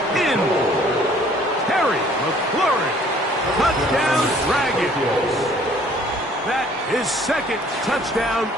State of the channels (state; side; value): normal; both; correlation 0.57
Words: in. Terry McLaurin. Touchdown Dragons. That is second touchdown